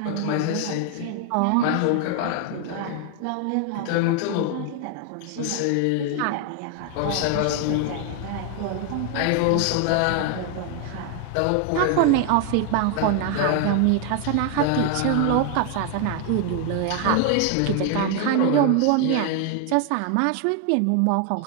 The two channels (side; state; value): both; different; correlation 0.00